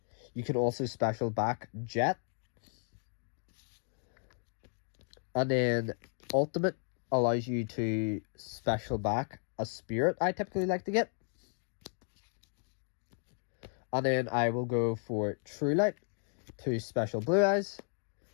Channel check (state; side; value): silent; right; 55 dB below the other